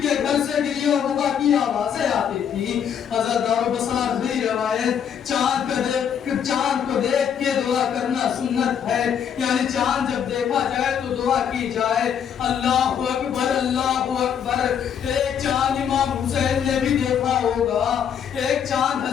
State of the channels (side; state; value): right; quieter; 8.3 dB